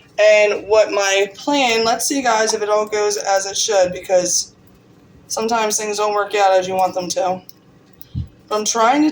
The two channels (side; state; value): both; identical; correlation 1.00